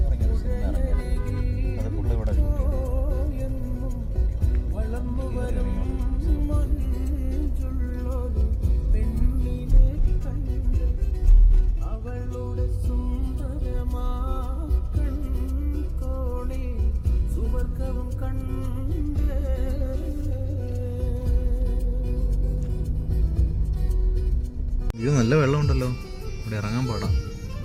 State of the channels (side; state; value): both; identical; correlation 1.00